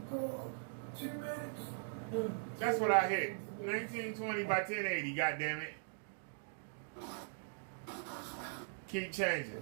minutes. That's what I hit. 1920 by 1080, goddammit. Keep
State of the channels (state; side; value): silent; left; digital silence